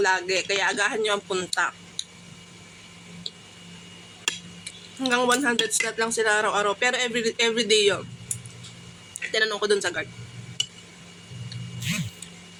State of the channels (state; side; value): identical; both; correlation 1.00